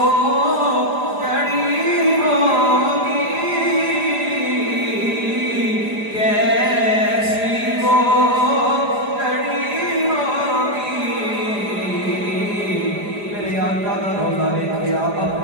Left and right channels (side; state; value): left; late; 4.9 ms